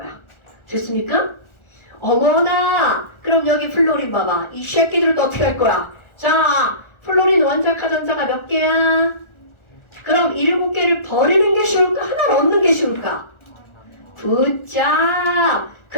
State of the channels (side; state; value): right; late; 1.4 ms